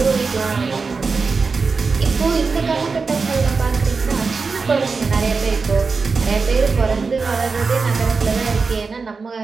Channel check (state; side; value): quieter; left; 4.6 dB